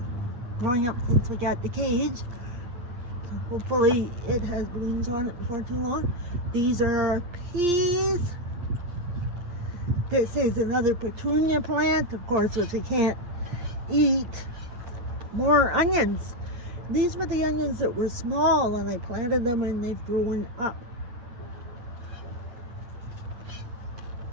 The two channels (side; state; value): left; late; 8.6 ms